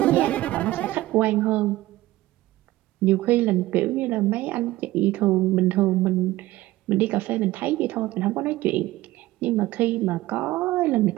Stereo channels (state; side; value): quieter; left; 17.1 dB